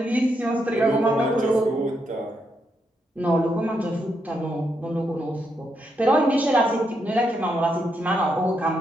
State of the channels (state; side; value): normal; both; correlation 0.80